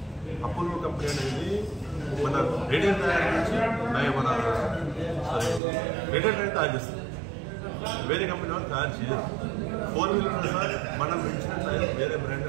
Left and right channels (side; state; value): left; drops out; at 5.6 s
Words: అపోలో కంపెనీ అనేది మన రేడియల్ టైర్ నుంచి మన రేడియల్ టైర్ తయారు చేస్తుంది. వేరే కంపెనీ వాళ్ళు తయారు చేయరు. 4 వీలర్ సార్ మనం పెంచిన టైర్ వేరే బ్రాండ్